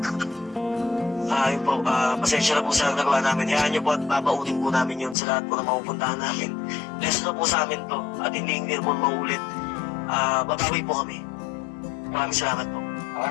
Yun po, pasensya na po sa nagawa namin. Hayaan niyo po at babaunin po namin yun sa lahat po na mapupuntahan namin. Lesson na po sa amin to at hindi po maulit. Babawi po kami. Maraming salamat po.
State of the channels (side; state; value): right; drops out; at 5.2 s